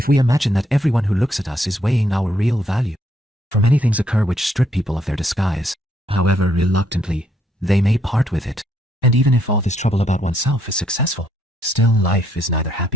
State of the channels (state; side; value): normal; both; correlation 0.72